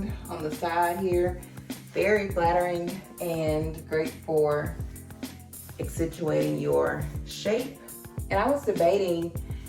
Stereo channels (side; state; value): both; identical; correlation 1.00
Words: on the side here. Very flattering and great for accentuating your shape. And I was debating